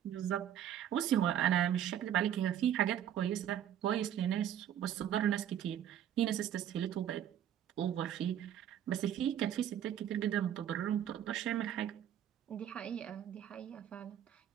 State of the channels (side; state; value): left; quieter; 10.3 dB